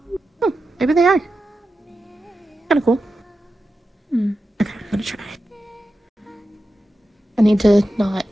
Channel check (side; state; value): both; normal; correlation 0.91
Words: Oh, maybe they are. Kinda cool. Hmm. Okay, I'm gonna try. I need to not